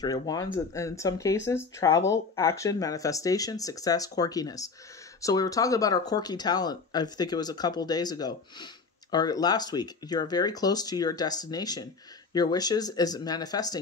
of Wands, and in some cases, travel, action, manifestation, success, quirkiness. So we were talking about our quirky talent, I think it was a couple days ago, or last week. You're very close to your destination. Your wishes is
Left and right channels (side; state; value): right; quieter; 4.6 dB